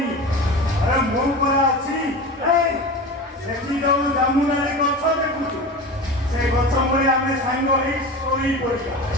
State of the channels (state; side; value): normal; both; correlation 0.30